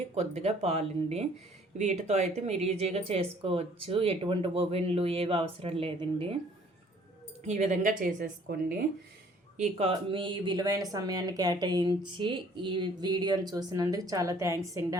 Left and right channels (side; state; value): both; normal; correlation 0.58